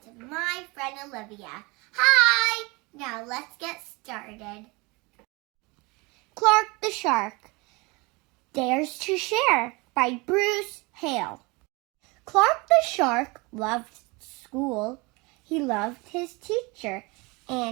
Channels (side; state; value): left; quieter; 26.2 dB